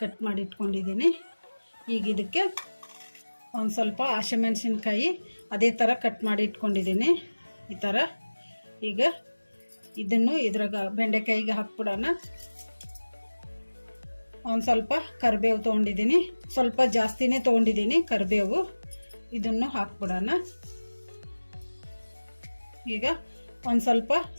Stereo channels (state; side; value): inverted; both; correlation -1.00